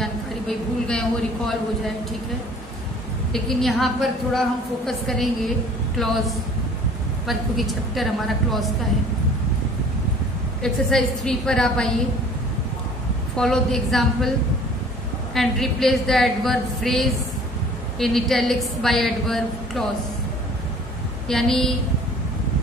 भाई भूल गए हो रिकॉल हो जाए। ठीक है, लेकिन यहाँ पर थोड़ा हम फोकस करेंगे क्लॉज पर, क्योंकि चैप्टर हमारा क्लॉज का है। एक्सरसाइज 3 पर आप आइए। Follow the example and replace the adverb phrase in italics by adverb clause. यानी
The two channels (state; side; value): normal; both; correlation 0.50